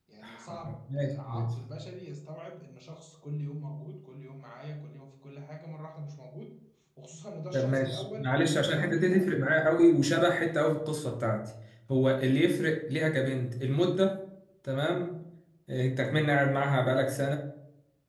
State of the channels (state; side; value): identical; both; correlation 1.00